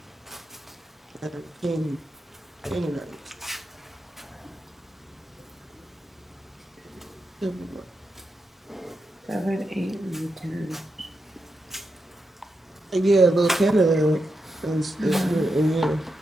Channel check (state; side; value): normal; both; correlation 0.86